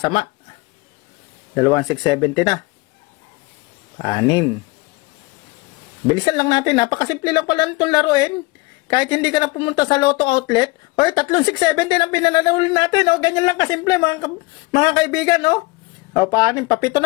2,670 na. 6. Bilisan lang natin. Napakasimple lang pala itong laruin. Kahit hindi ka na pumunta sa Lotto Outlet. Oy, 3,670 ang pinananalo natin. O, ganyan lang kasimple mga kaibigan. O, 6. Papito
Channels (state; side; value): quieter; right; 23.5 dB